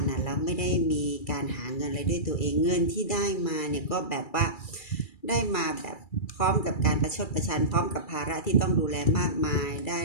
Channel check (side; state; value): right; late; 2.3 ms